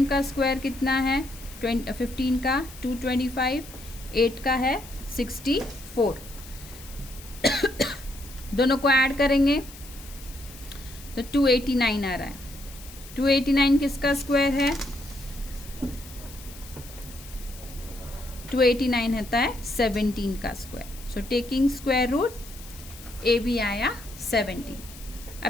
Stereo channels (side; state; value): left; noise; hiss, 17 dB below the sound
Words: का स्क्वायर कितना है 15 का 225, 8 का है 64. दोनों को ऐड करेंगे तो 289 आ रहा है. 289 किसका स्क्वायर है, 289 होता है 17 का square. So taking square root AB आया 17.